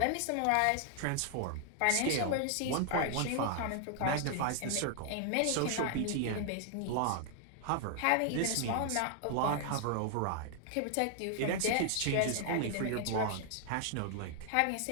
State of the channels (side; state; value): both; different; correlation 0.00